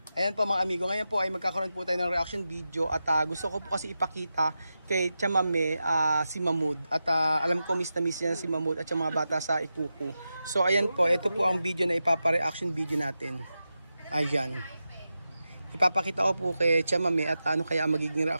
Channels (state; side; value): inverted; both; correlation -0.91